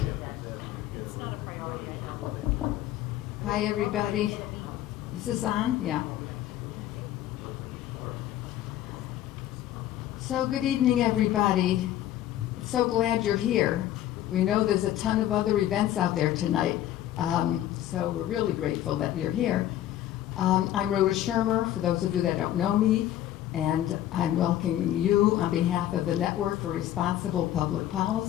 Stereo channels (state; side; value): quieter; right; 12.6 dB